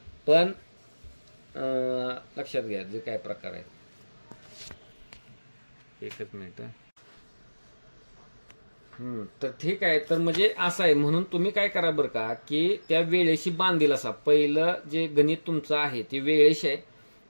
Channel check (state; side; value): inverted; both; correlation -1.00